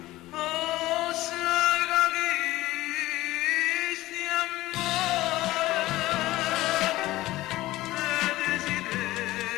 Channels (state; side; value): quieter; right; 17.3 dB